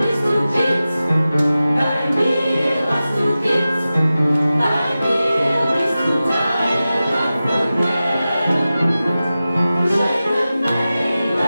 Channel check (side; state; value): both; inverted; correlation -0.95